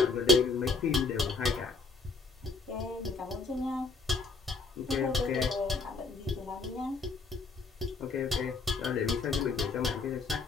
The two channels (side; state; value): right; quieter; 3.7 dB